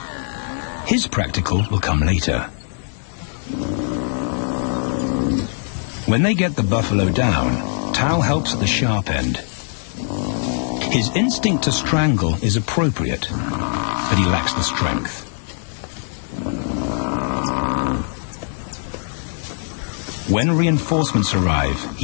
His practical will come later. When they get the buffalo down, Tau helps at the sharp end. His instinct to strangle is appropriate, but he lacks the strength. When reinforcements arrive,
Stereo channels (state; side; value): silent; right; 60 dB below the other